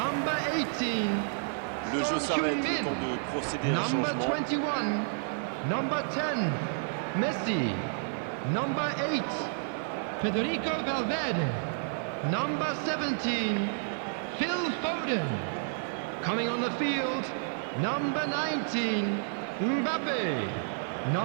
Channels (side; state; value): left; silent; digital silence